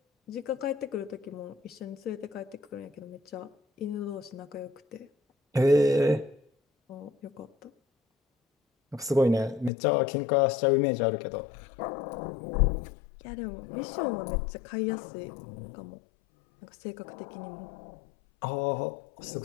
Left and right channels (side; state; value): right; drops out; at 9.7 s